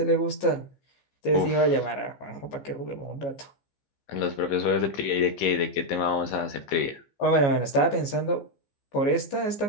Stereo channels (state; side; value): late; right; 15 ms